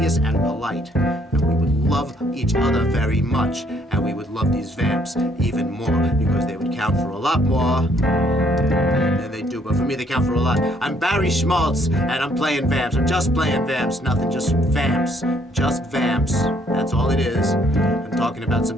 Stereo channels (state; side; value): normal; both; correlation 0.66